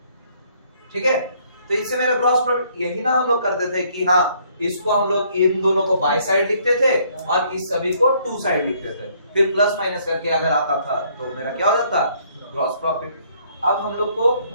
ठीक है। तो इससे मेरा ग्रॉस प्रॉफिट, यही ना हम लोग करते थे कि हाँ इसको हम लोग इन दोनों को बाय साइड लिखते थे और इस सभी को टू साइड लिखते थे, फिर प्लस माइनस करके अगर आता था तो मेरा क्या हो जाता, ग्रॉस प्रॉफिट। अब हम लोग को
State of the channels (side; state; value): both; inverted; correlation -0.65